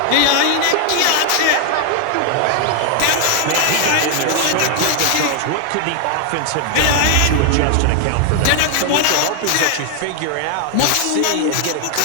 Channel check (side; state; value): both; different; correlation 0.00